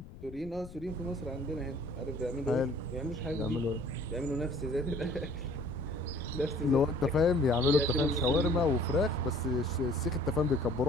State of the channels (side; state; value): left; noise; rumble, 16 dB below the sound